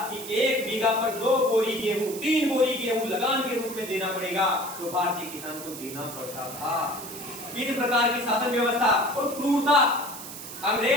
कि 1 बीघा पर 2 बोरी गेहूं, 3 बोरी गेहूं लगान के रूप में देना पड़ेगा, तो भारतीय किसान को देना पड़ता था। इस प्रकार की शासन व्यवस्था और क्रूरता,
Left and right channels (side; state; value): right; noise; hiss, 11 dB below the sound